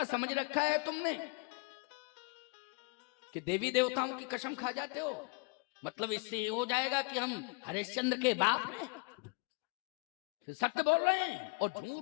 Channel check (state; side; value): quieter; right; 30.9 dB